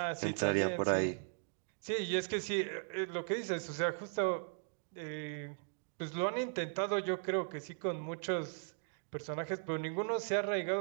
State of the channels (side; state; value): left; silent; digital silence